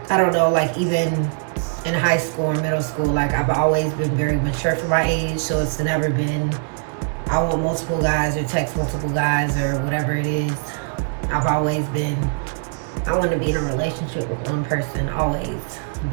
I don't know, like even in high school or middle school, like I've always been very mature for my age, so it's never been, I want multiple guys or text multiple guys or whatever it is. I've always been, I want to be in a relationship with one person, always,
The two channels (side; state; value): left; silent; 64 dB below the other